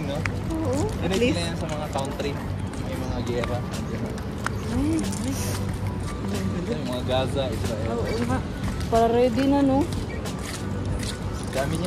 no? Oo. Dinigil na yan sa mga country. May mga gera. Ay, Ito yung mga Gaza, Israel. oo nga. Para ready na no? Dami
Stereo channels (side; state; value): both; identical; correlation 1.00